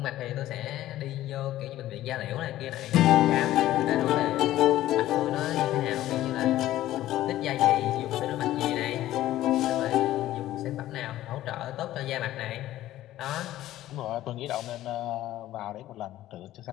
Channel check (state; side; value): quieter; right; 14.3 dB